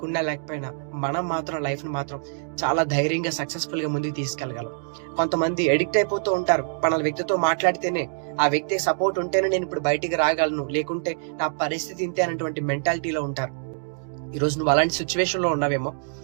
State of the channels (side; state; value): left; silent; digital silence